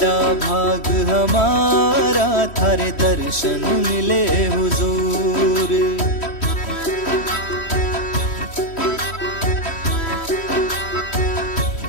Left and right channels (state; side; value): late; right; 3.1 ms